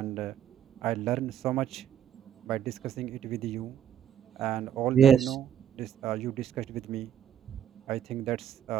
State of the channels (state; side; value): quieter; left; 9.6 dB